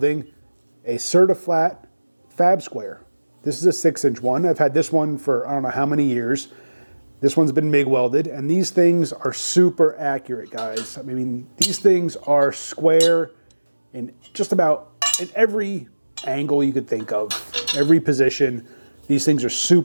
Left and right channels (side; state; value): both; inverted; correlation -1.00